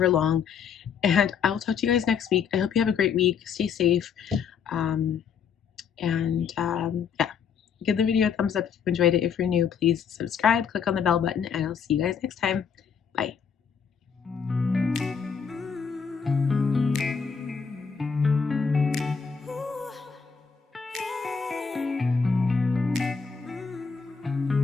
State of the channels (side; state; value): right; quieter; 6.5 dB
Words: long. And I will talk to you guys next week. I hope you have a great week. Stay safe. Yeah. Give the video a thumbs up if you enjoyed it. If you're new, please subscribe, click on the bell button, and I'll see you guys next time. Bye.